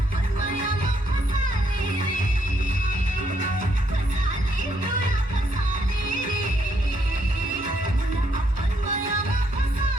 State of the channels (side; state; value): both; normal; correlation 0.73